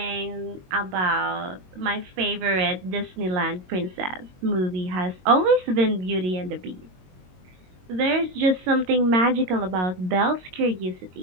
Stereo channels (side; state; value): left; late; 22 ms